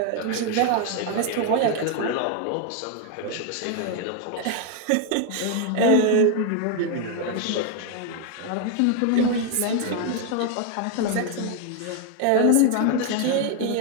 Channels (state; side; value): different; both; correlation 0.00